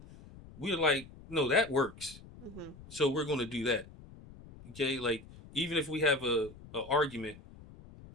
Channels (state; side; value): noise; left; rumble, 19 dB below the sound